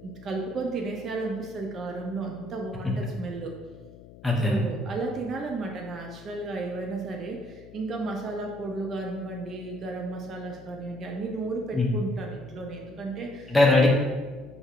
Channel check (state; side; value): noise; left; hum, 18 dB below the sound